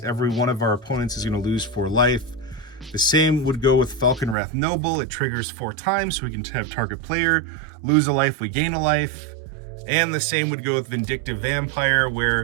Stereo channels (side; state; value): left; drops out; at 4.4 s